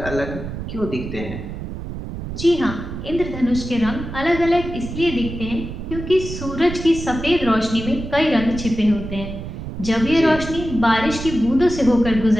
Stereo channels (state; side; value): noise; right; rumble, 8 dB below the sound